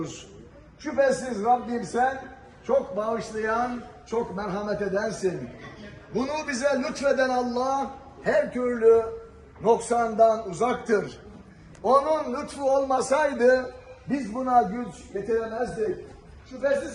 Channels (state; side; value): identical; both; correlation 1.00